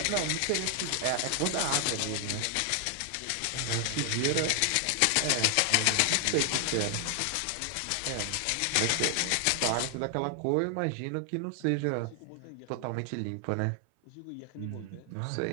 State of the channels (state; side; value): different; both; correlation 0.00